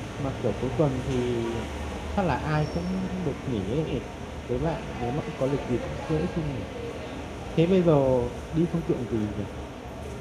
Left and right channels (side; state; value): both; identical; correlation 1.00